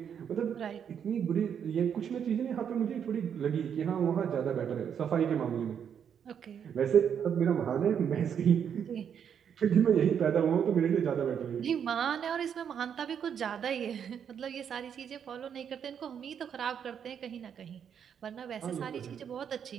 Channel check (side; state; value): left; quieter; 8.1 dB